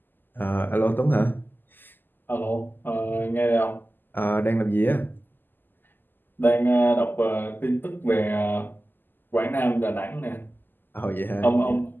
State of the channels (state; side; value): late; right; 0.091 ms